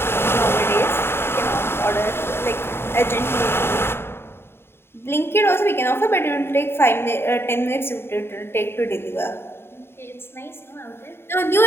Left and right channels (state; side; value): late; right; 0.11 ms